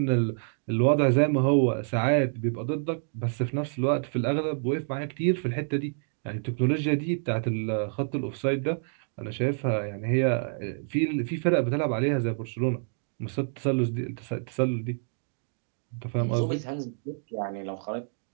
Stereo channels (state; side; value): silent; left; digital silence